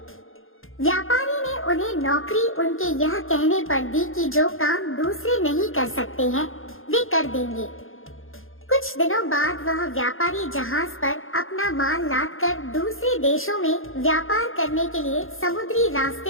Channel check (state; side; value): late; right; 0.60 ms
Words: व्यापारी ने उन्हें नौकरी उनके यह कहने पर दी कि जो काम दूसरे नहीं कर सकते हैं वे कर देंगे। कुछ दिनों बाद वह व्यापारी जहाज पर अपना माल लादकर दूसरे देशों में व्यापार करने के लिए समुद्री